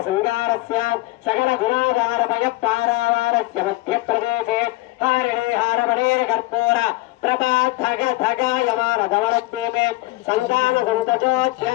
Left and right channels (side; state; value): right; quieter; 20.1 dB